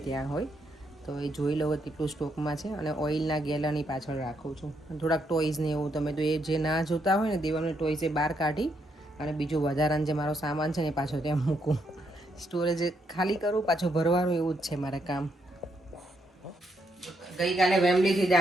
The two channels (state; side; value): normal; both; correlation 0.77